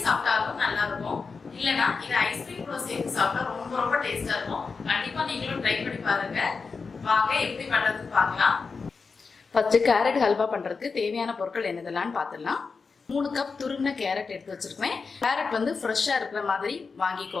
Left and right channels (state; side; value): quieter; right; 4.8 dB